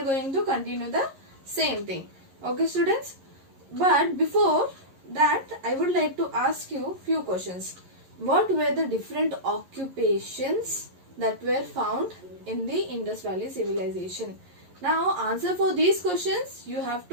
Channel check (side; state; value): left; late; 11 ms